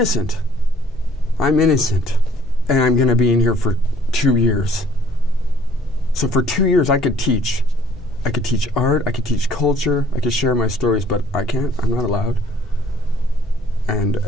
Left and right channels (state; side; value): normal; both; correlation 0.58